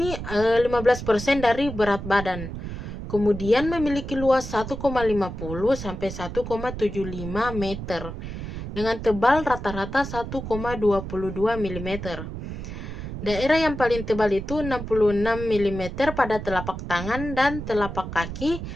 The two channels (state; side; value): noise; right; rumble, 8 dB below the sound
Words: 15% dari berat badan. Kemudian memiliki luas 1,50 sampai 1,75 meter dengan tebal rata-rata 1,22 mm. Daerah yang paling tebal itu 66 mm pada telapak tangan dan telapak kaki,